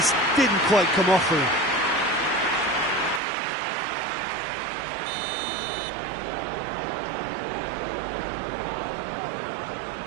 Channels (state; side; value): drops out; left; at 3.2 s